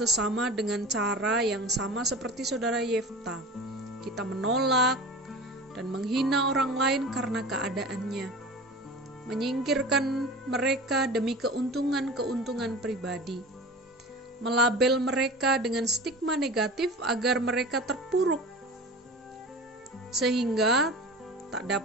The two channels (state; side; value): normal; both; correlation 0.35